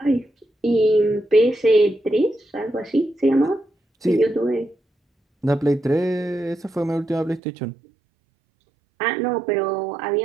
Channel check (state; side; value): drops out; left; at 7.4 s